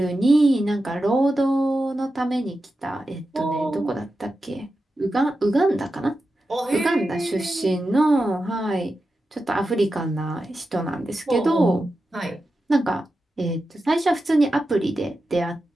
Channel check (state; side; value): normal; both; correlation 0.91